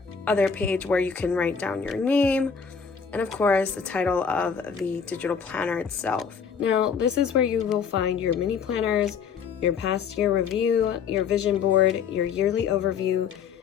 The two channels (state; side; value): quieter; right; 6.5 dB